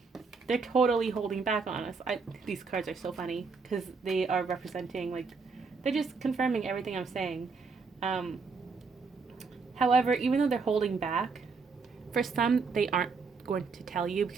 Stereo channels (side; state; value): left; quieter; 4.7 dB